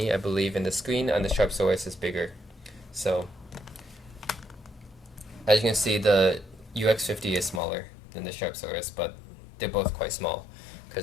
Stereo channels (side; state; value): right; drops out; at 7.6 s